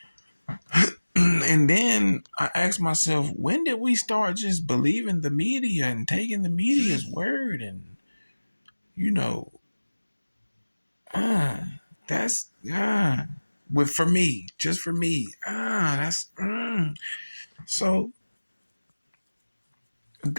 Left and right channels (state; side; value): inverted; both; correlation -1.00